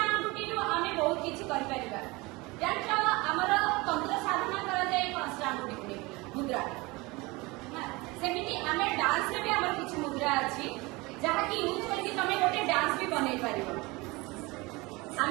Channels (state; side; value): quieter; left; 23.8 dB